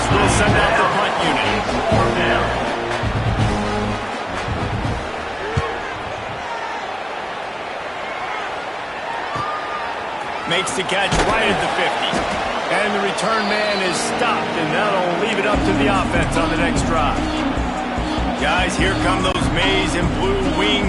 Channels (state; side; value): identical; both; correlation 1.00